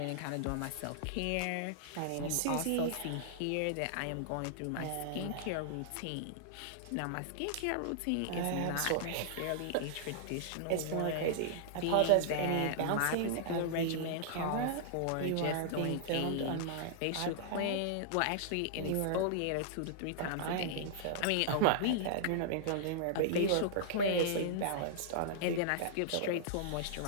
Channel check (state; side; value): different; both; correlation -0.01